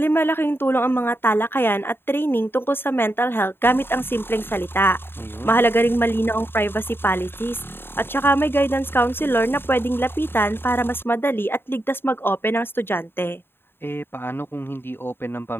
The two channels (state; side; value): late; right; 0.11 ms